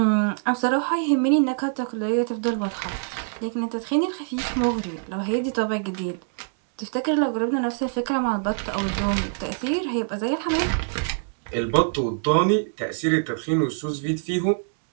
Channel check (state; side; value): silent; left; digital silence